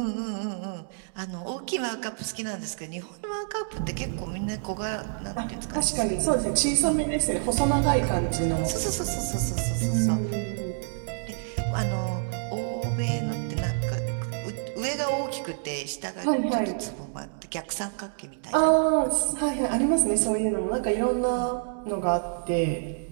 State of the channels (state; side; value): silent; left; digital silence